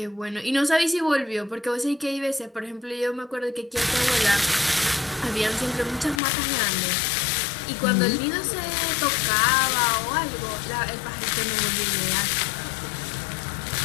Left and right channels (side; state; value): right; drops out; at 6.2 s